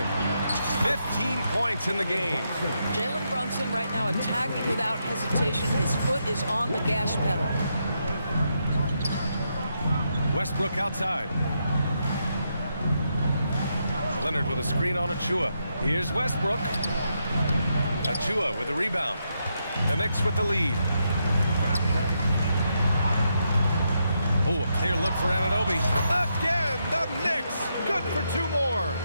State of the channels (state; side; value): inverted; both; correlation -0.81